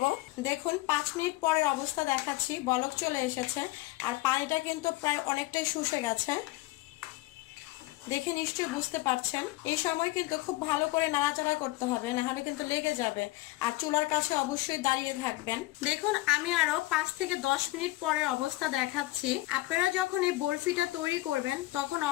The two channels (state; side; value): quieter; right; 19.1 dB